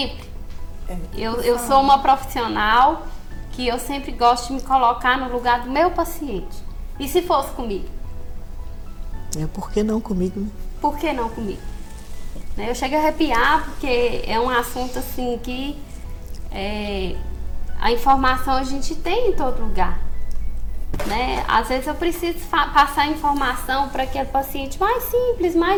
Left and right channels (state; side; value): identical; both; correlation 1.00